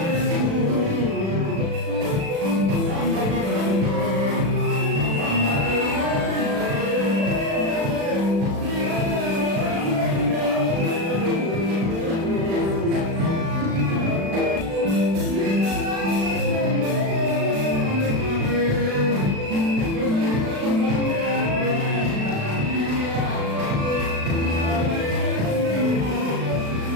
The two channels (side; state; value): left; late; 36 ms